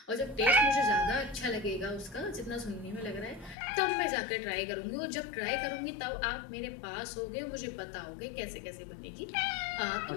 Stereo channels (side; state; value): right; drops out; at 3.6 s